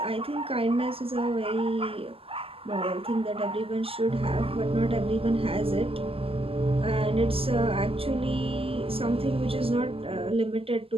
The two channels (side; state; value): left; late; 0.27 ms